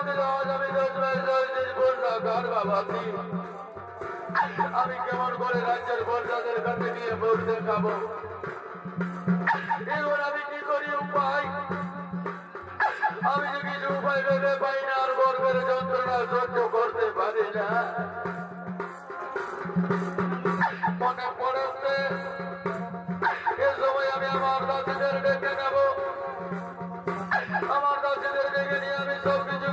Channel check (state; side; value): identical; both; correlation 1.00